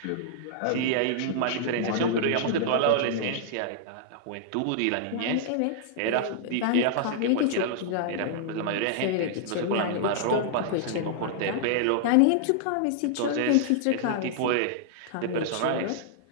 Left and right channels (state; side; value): different; both; correlation -0.01